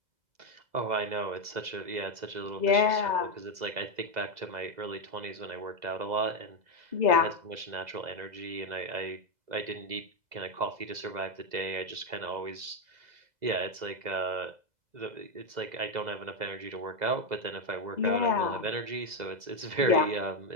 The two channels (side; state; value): left; late; 2.0 ms